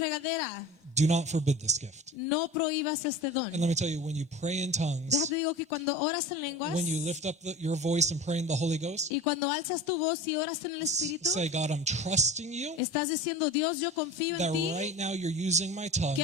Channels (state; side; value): normal; both; correlation 0.34